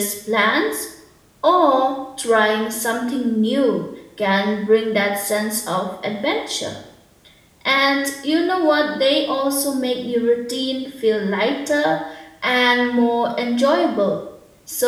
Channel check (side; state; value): both; identical; correlation 1.00